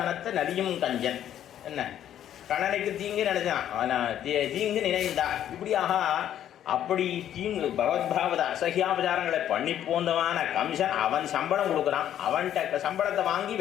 நலியும் கஞ்சன். என்ன கணனைக்கு தீங்கு நினைச்சான், தீங்கு நினைந்தான். இப்படியாக அப்படி தீங்கு பகவத்பாவத அசகியாபச்சாரங்களை பண்ணி போந்தவான கம்சன் அவன் சம்பளம் கொடுக்குறான். அவன்கிட்ட சம்பளத்தை வாங்கி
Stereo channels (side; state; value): right; quieter; 10.8 dB